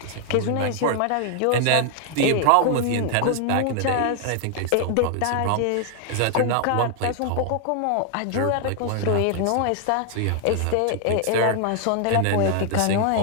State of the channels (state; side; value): different; both; correlation 0.00